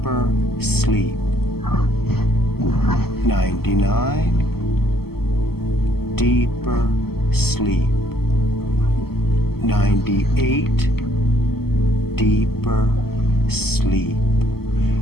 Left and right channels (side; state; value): right; late; 0.96 ms